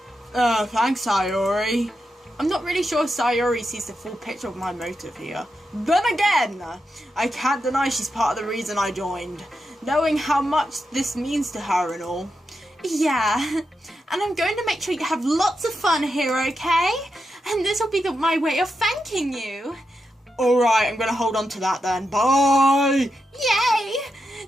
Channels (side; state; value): both; normal; correlation 0.87